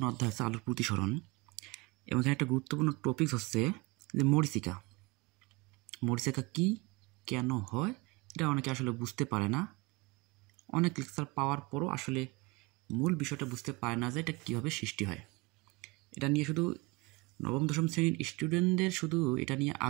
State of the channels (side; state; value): left; quieter; 25.2 dB